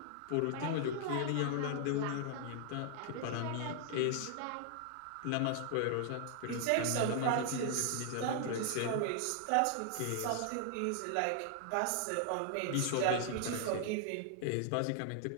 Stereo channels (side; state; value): both; different; correlation 0.00